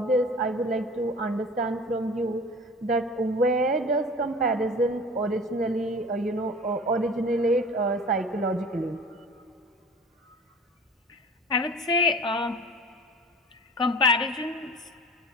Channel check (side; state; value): both; normal; correlation 0.41